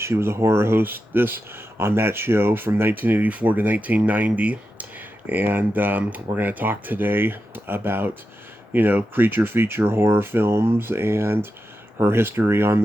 She was a horror hostess on that show from 1984 to 1990, and we're going to talk today about creature feature horror films and her history on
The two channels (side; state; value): both; normal; correlation 0.89